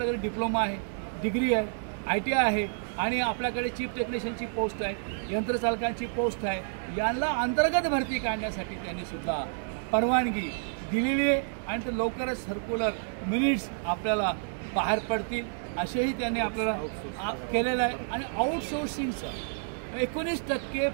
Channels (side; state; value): left; silent; 58 dB below the other